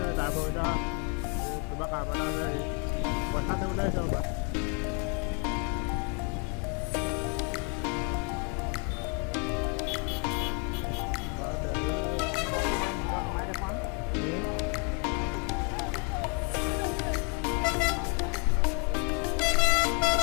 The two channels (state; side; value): quieter; right; 37.1 dB